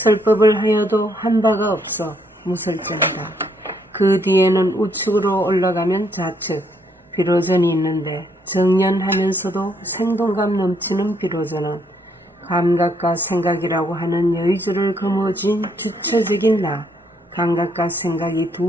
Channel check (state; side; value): normal; both; correlation 0.71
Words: 하여도 한 바가 없어 무설전이다. 그 뒤에는 우측으로 올라가면 좌측, 비로전이 있는데 정연하면서도 생동감 넘치는 비로전은 감각과 생각이라고 하는 여의주를 거머쥔 주체적인 나, 감각과 생각이